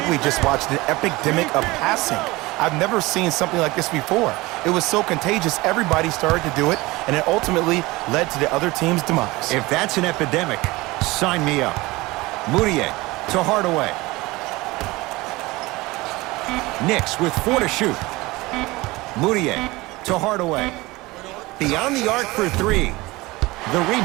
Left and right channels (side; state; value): left; quieter; 21.2 dB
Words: we just watched an epidemic of passing. I've never seen something like this before. It was so contagious, everybody started to do it, and it ultimately led to the other team's demise. If that's an epidemic, sign me up. Moutier to Hardaway. Knicks with 4 to shoot. Moutier to Hardaway. Beyond the arc for 3. The